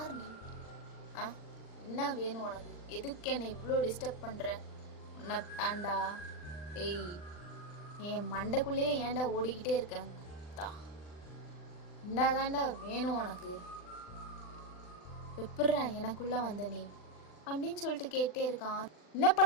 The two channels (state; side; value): late; right; 39 ms